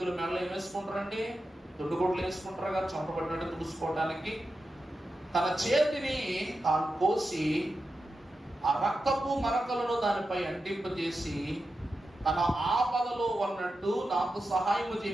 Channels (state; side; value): normal; both; correlation 0.90